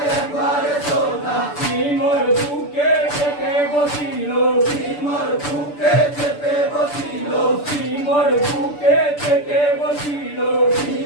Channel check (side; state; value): right; late; 6.9 ms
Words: সিমর বুকে চেপে বসিল সিমর বুকে চেপে বসিল সিমর বুকে চেপে বসিল